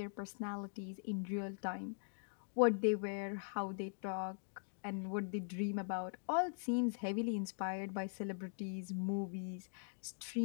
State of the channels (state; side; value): silent; right; digital silence